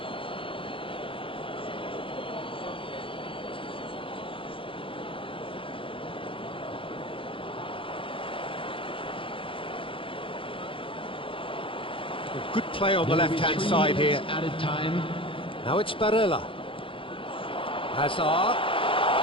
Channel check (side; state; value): right; late; 0.25 ms